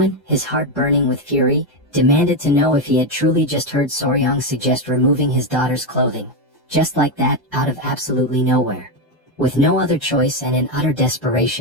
his heart burning with fury, demanded to know if he had truly just heard Soryang suggest removing his daughter's clothing. Just like that, out of absolutely nowhere. With no other choice and in utter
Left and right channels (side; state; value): both; normal; correlation 0.08